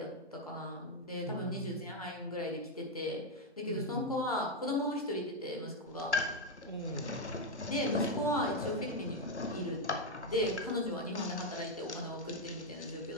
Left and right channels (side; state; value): both; normal; correlation 0.04